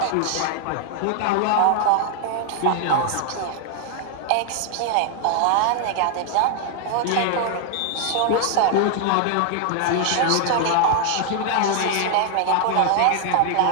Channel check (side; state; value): both; different; correlation 0.00